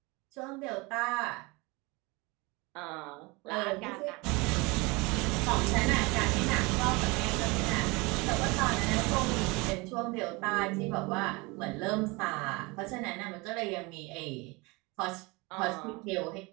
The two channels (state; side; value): quieter; left; 25.8 dB